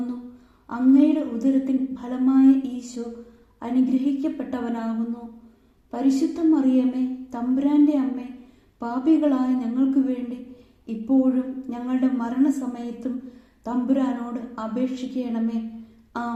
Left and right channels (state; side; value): identical; both; correlation 1.00